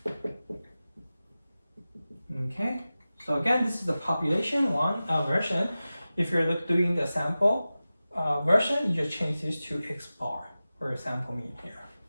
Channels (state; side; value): inverted; both; correlation -0.95